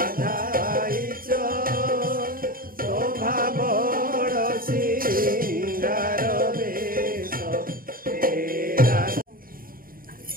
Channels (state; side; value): late; left; 0.41 ms